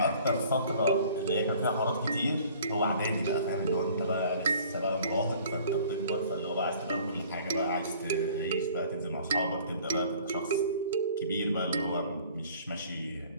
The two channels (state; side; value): inverted; both; correlation -0.52